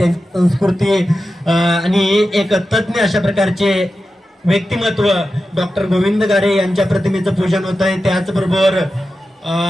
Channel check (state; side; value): normal; both; correlation 0.92